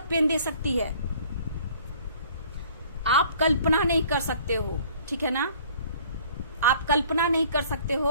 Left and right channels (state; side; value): inverted; both; correlation -0.53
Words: पेन दे सकती है। आप कल्पना नहीं कर सकते हो, ठीक है ना, आप कल्पना नहीं कर सकते हो